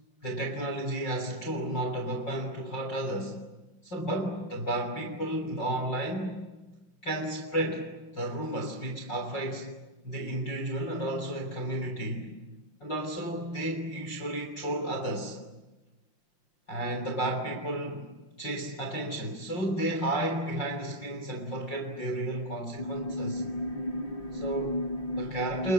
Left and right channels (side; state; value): right; late; 5.7 ms